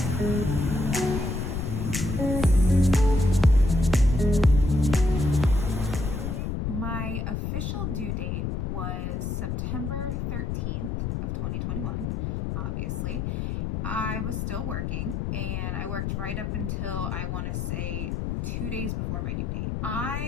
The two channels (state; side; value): noise; left; rumble, 2 dB below the sound